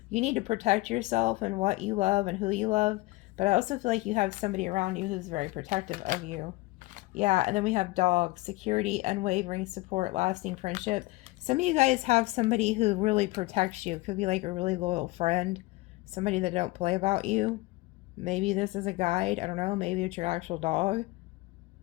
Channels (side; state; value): right; quieter; 20.8 dB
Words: You need to protect yourself and what you love and who you love. But I also feel like you have somebody around you who's very protective of you. Yeah, and then we have dog, security, unwavering support, lasting friendship. Some of you guys have somebody who really protects you. It could be like a really loyal friend, somebody that don't play about you. Maybe this is a guide. I don't know. Maybe it's your actual dog.